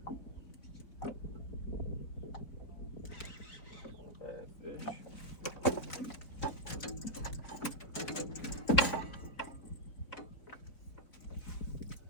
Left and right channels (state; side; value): late; right; 4.1 ms